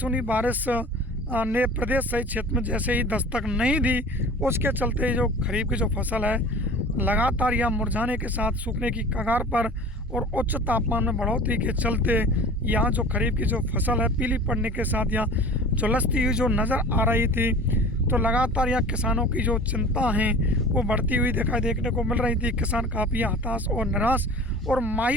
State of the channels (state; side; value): normal; both; correlation 0.40